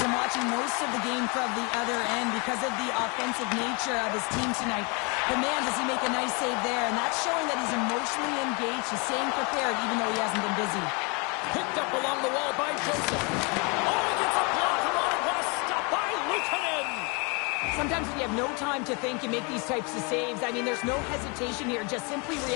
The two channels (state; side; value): quieter; right; 31.5 dB